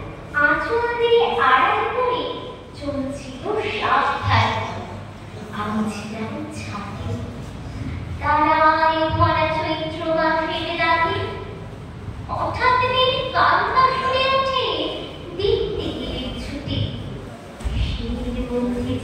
আঁচল দিয়ে আড়াল করে চলছিল সাবধানে। আমি ছিলাম ছাদে, তারায় ভরা চৈত্র মাসের রাতে। হঠাৎ কান্না শুনে ওঠে দেখতে গেলে ছুটে। শির মধ্যে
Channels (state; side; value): identical; both; correlation 1.00